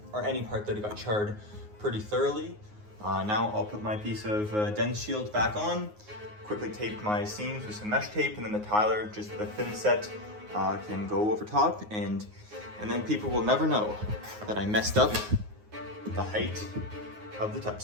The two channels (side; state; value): left; late; 9.5 ms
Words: or any part that it got charred, pretty thoroughly. Now I'll put my piece of dense shield back on, quickly tape my seams with some mesh tape, and then the tiler, just with a thin set, can go over top, and then people will never know that I messed up the height of the tub